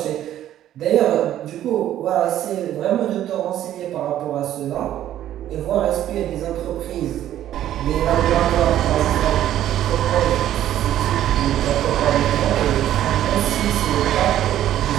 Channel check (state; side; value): quieter; left; 12.1 dB